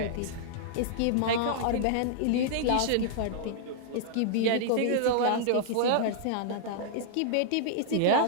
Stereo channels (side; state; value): both; different; correlation -0.01